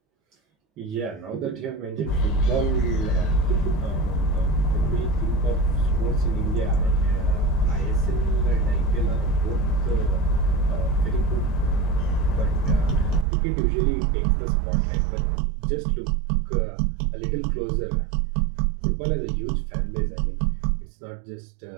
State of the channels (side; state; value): left; drops out; at 13.2 s